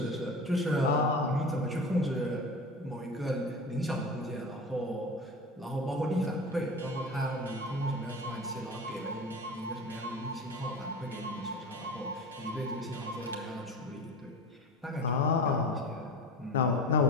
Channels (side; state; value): both; normal; correlation 0.31